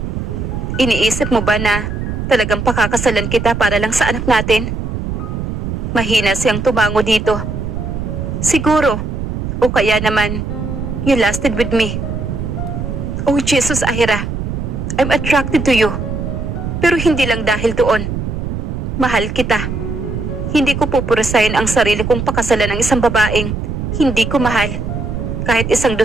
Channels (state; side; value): noise; right; rumble, 4 dB below the sound